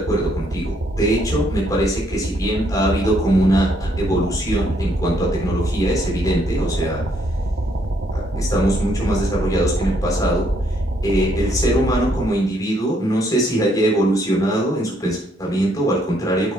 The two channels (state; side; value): normal; both; correlation 0.70